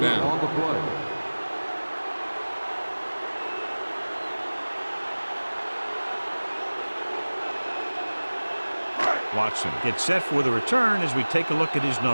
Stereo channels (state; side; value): inverted; both; correlation -1.00